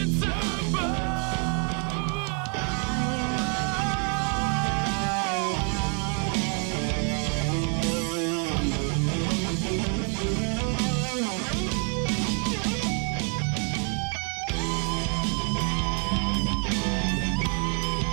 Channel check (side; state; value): left; quieter; 40.0 dB